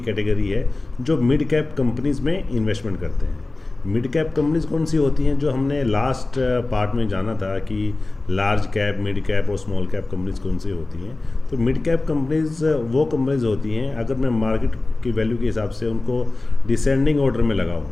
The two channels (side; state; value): right; quieter; 3.1 dB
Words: कैटेगरी है जो मिड कैप कंपनीज़ में इन्वेस्टमेंट करते हैं। मिड कैप कंपनीज कौन सी होती हैं, जो हमने लास्ट पार्ट में जाना था कि लार्ज कैप, मिड कैप और स्मॉल कैप कंपनीज कौन सी होती हैं। तो मिड कैप कंपनीज वो कंपनीज होती हैं, अगर मैं मार्केट की वैल्यू के हिसाब से उनको डिसेंडिंग ऑर्डर में लगाऊं